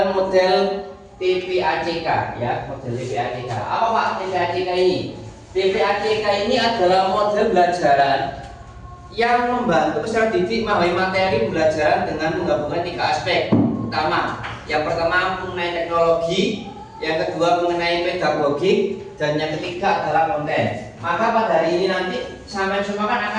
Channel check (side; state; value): both; identical; correlation 1.00